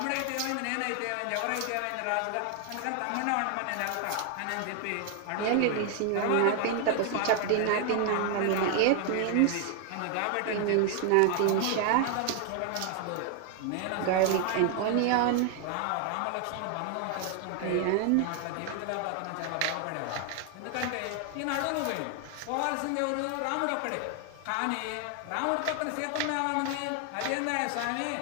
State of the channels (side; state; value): both; different; correlation 0.00